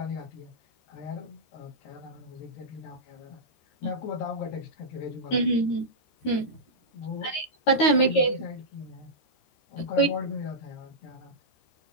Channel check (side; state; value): right; late; 13 ms